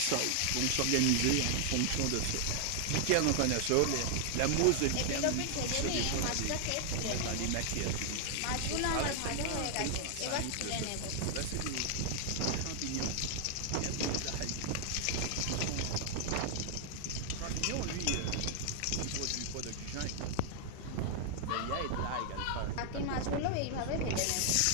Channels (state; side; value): different; both; correlation 0.00